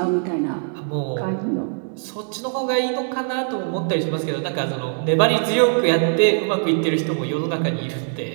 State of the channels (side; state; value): left; silent; 64 dB below the other